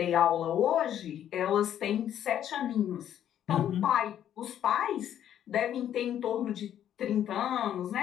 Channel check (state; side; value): quieter; right; 10.5 dB